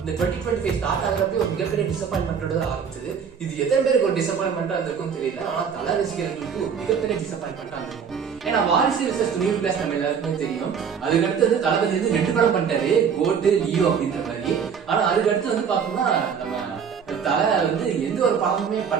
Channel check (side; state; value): left; quieter; 6.9 dB